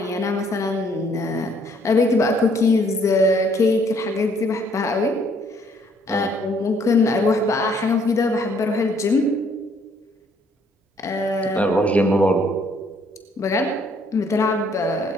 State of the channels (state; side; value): normal; both; correlation 0.65